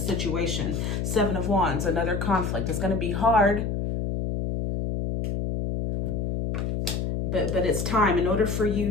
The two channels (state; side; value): noise; left; hum, 1 dB below the sound